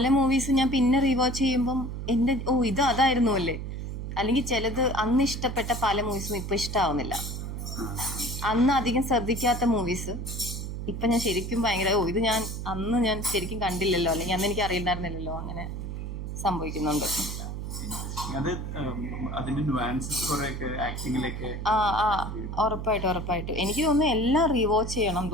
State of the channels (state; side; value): noise; right; hum, 6 dB below the sound